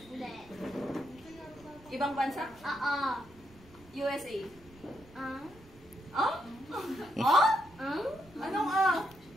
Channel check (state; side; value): noise; right; rumble, 23 dB below the sound